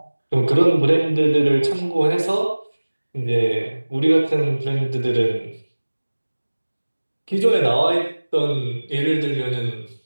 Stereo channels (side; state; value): both; inverted; correlation -1.00